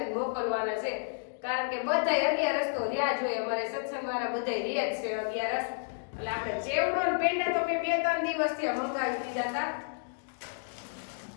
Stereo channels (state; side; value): silent; right; digital silence